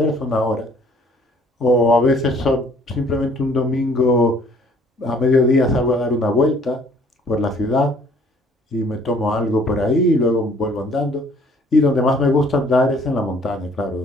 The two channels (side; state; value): both; normal; correlation 0.58